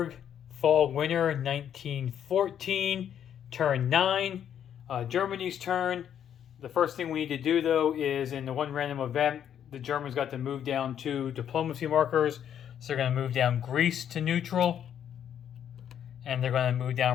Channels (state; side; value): quieter; right; 9.4 dB